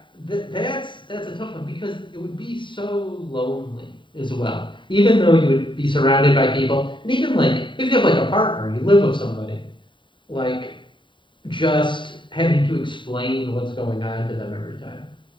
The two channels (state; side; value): late; right; 0.23 ms